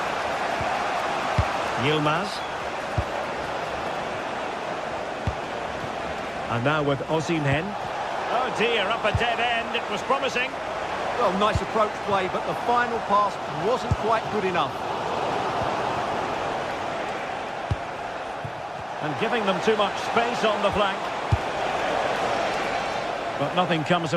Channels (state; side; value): identical; both; correlation 1.00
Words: Yilmaz. And now with Osimhen. Oh dear, up a dead end. It was promising. Well, nice approach play, but the final pass wasn't quite good enough. And giving them too much space on the flank. But nothing comes